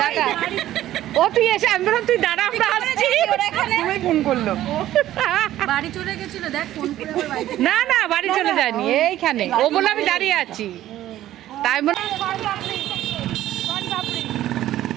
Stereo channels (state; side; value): quieter; left; 13.5 dB